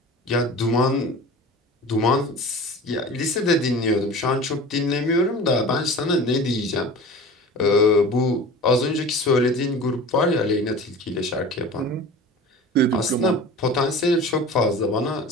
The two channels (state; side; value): normal; both; correlation 0.38